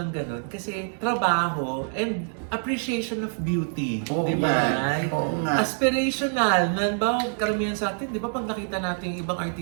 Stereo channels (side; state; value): left; silent; 61 dB below the other